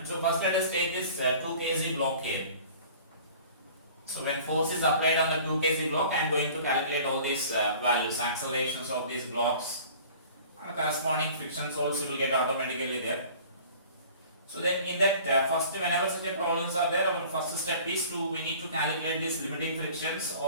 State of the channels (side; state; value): both; inverted; correlation -0.46